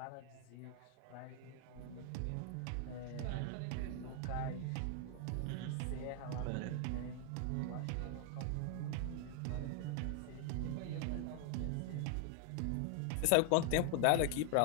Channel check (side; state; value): both; different; correlation 0.00